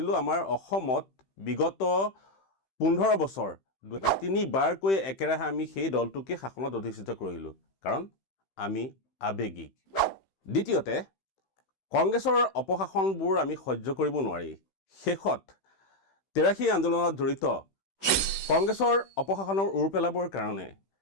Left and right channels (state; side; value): late; right; 15 ms